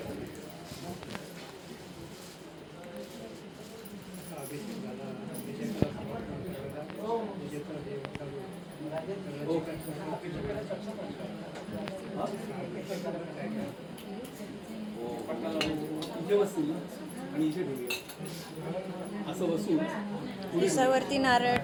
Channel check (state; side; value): identical; both; correlation 1.00